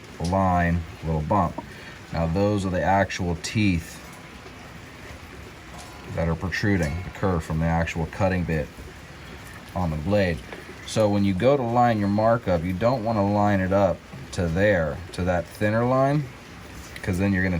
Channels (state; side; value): identical; both; correlation 1.00